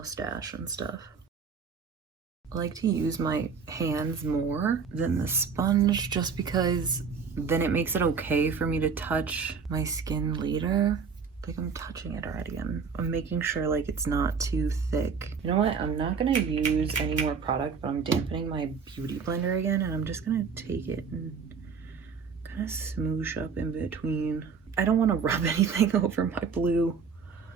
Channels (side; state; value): left; quieter; 5.8 dB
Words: and stuff. I like to use my hands more than the sponge just because then it makes it okay for me to touch my skin later. Like, I'm touching it already. I'm making sure like it's not too thick. You know what? I'm not gonna use any more product, but I'm dampening my beauty blender again, and I'm just gonna take it and kind of smoosh up in between. I don't want to rub anything over my blue